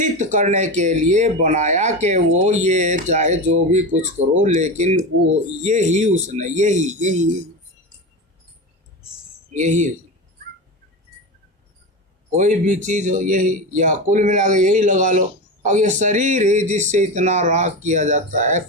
करने के लिए बनाया कि वो ये चाहे जो भी कुछ करो लेकिन वो यही उसने यही यही यही कोई भी चीज हो यही, या कुल मिला के यही लगा लो। अब ये शरीर ही जिससे इतना राग किया जाता है,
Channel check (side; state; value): both; normal; correlation 0.22